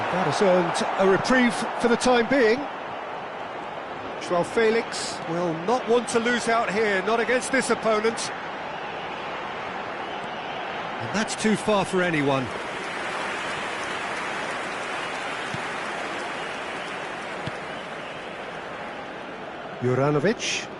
that has earned a reprieve for the time being. João Felix will not want to lose out here, not against this opponent. And that's too far for anyone. Juranovic,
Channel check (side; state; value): both; identical; correlation 1.00